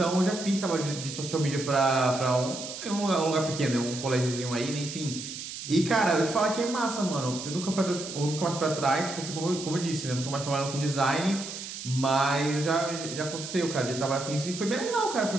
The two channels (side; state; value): right; noise; hiss, 9 dB below the sound